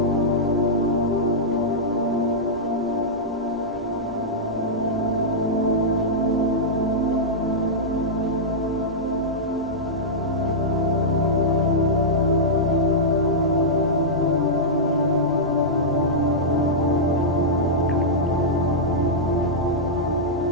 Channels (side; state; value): both; normal; correlation -0.10